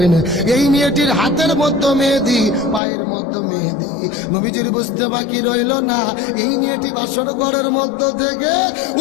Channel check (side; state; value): right; drops out; at 2.8 s